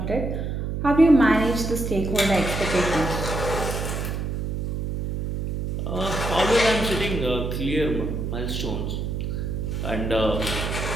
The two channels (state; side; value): noise; right; hum, 3 dB below the sound